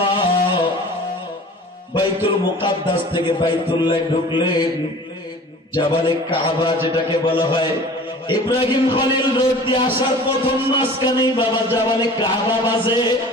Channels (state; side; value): normal; both; correlation 0.43